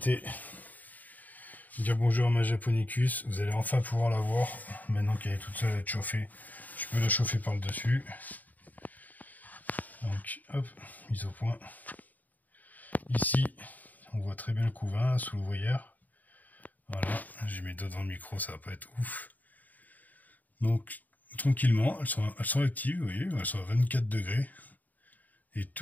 Dire bonjour à ma Japonicus. Vous allez enfin pouvoir la voir. Maintenant qu'elle est toute seule à être chauffée, je peux la chauffer par le dessus. Donc, hop, mise au point. Ici, on voit très bien le couvain sous l'ouvrière. Voilà, j'ai mes doigts dans le micro, ça va pas être ouf. Donc, tranquillement, elles sont actives, vous voyez, elles sont à 24 degrés. Et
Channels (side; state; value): right; late; 0.081 ms